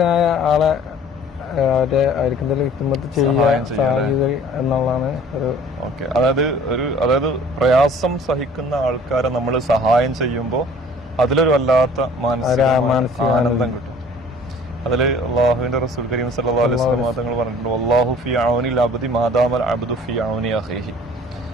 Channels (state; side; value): normal; both; correlation 0.50